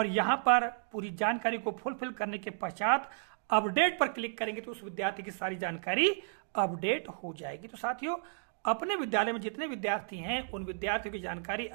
यहाँ पर पूरी जानकारी को फुलफिल करने के पश्चात अपडेट पर क्लिक करेंगे तो उस विद्यार्थी की सारी जानकारी अपडेट हो जाएगी। तो साथियों, अपने विद्यालय में जितने विद्यार्थी हैं उन विद्यार्थियों की जानकारी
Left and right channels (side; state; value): left; silent; digital silence